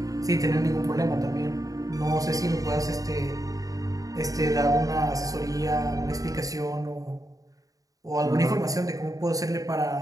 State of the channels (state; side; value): late; left; 0.17 ms